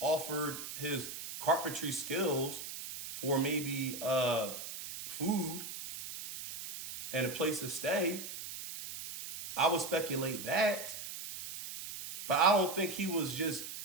his carpentry skills for maybe food and a place to stay. I would speculate that. But I don't think he was just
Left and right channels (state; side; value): noise; right; hiss, 9 dB below the sound